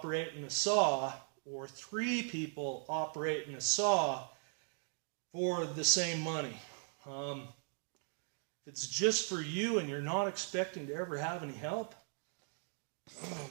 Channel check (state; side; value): silent; left; 52 dB below the other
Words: a saw, or 3 people operating a saw for the same money. If it's just for you and you're not expecting to ever have any help, oh